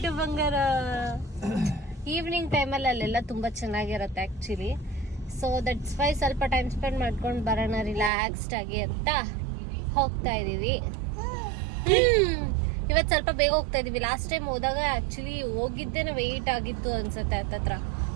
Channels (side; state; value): left; drops out; at 8.1 s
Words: ಬಂಗಾರ ಈವ್ನಿಂಗ್ ಟೈಮಲ್ಲಿ ಅಲ್ಲೆಲ್ಲ ತುಂಬಾ ಚೆನ್ನಾಗಿರುತ್ತೆ ಆಕ್ಚುಲಿ. ಸೊ ದಟ್ಸ್ ವೈ ಸ್ವಲ್ಪ ಟೈಮ್ ಸ್ಪೆಂಡ್ ಮಾಡ್ಕೊಂಡು ಬರೋಣ ರಿಲ್ಯಾಕ್ಸ್ಡ್ ಆಗಿ ಅಂತ ಹೋಗ್ತಾ ಇದೀವಿ. ಇವತ್ತು ಸ್ವಲ್ಪ ಬೇಗ ಹೋಗ್ತಾ ಇದೀವಿ. ಲಾಸ್ಟ್ ಟೈಮ್ ಹೋದಾಗ ಆಕ್ಚುಲಿ ಹೋಗಿದ್ದೇನೆ ವೆಯ್ಟ್ ಆಗಿತ್ತು ಅನ್ಸುತ್ತೆ ಹತ್ತತ್ರ